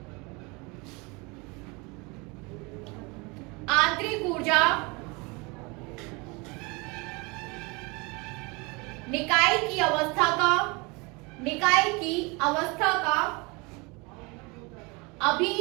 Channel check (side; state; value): left; quieter; 27.5 dB